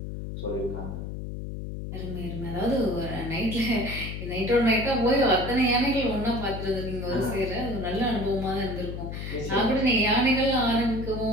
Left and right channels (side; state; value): left; noise; hum, 7 dB below the sound